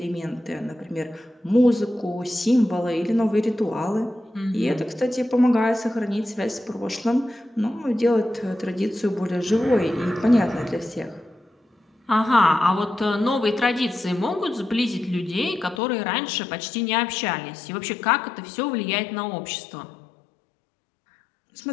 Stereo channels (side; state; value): right; drops out; at 15.8 s